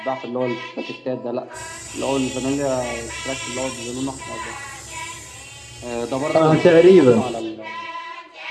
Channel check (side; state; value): both; identical; correlation 1.00